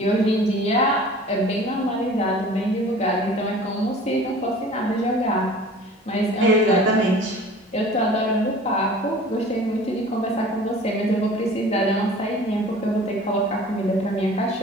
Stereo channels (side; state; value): both; normal; correlation 0.44